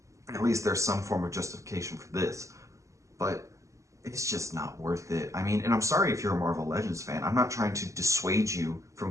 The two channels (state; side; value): late; left; 0.15 ms